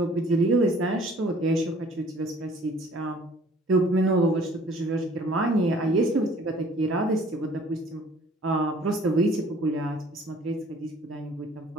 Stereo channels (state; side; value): normal; both; correlation 0.54